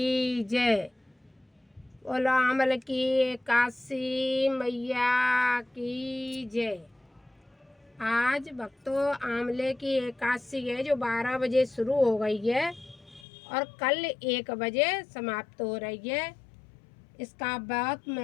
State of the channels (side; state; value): right; drops out; at 13.2 s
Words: जय। बोलो आमल की काशी मैया की जय। आज भक्तों आंवले की एकादशी है जो 12 बजे शुरू हो गई है और कल 1 बजे समाप्त हो रही है। इसका बहुत